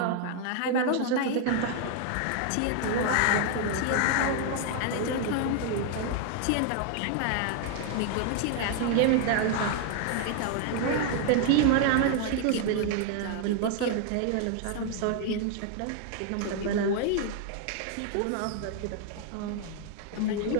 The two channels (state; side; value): different; both; correlation 0.00